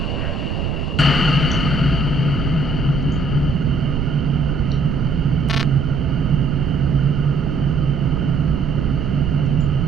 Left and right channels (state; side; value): noise; right; rumble, 2 dB below the sound